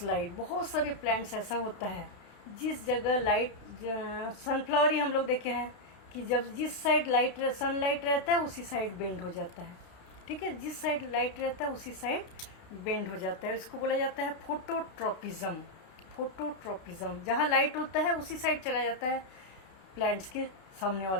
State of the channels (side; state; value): right; late; 32 ms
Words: light. बहुत सारे प्लांट्स ऐसा होता है जिस जगह लाइट, सनफ्लावर ही हम लोग देखे हैं कि जब जिस साइड लाइट सनलाइट रहता है उसी साइड बेंड हो जाता है। ठीक है, जिस साइड लाइट रहता है उसी साइड बेंड हो जाता है। इसको बोला जाता है फोटोट्रोपिज्म। फोटोट्रोपिज्म, जहाँ लाइट होता है उसी साइड चला जाता है प्लांट्स के सामने